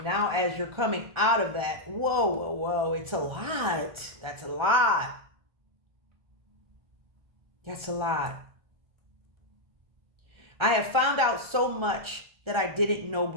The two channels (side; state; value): left; late; 1.4 ms